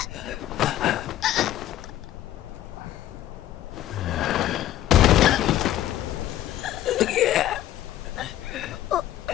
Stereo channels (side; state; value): right; quieter; 13.1 dB